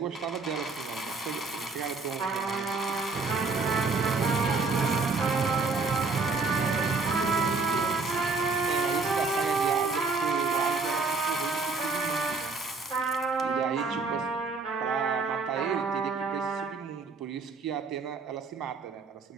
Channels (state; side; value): quieter; left; 4.1 dB